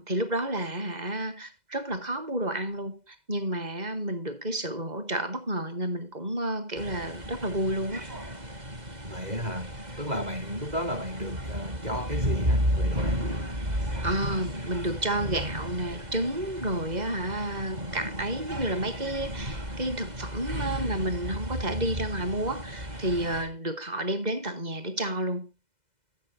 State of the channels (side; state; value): left; late; 2.0 ms